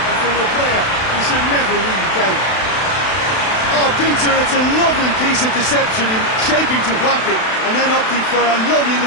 from a player you should never really doubt. Oh, Peter, it's a lovely piece of deception in shaping to whack it, and then opting for a lovely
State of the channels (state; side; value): late; right; 32 ms